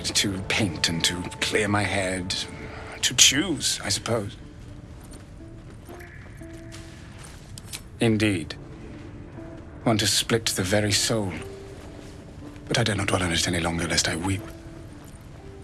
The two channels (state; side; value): identical; both; correlation 1.00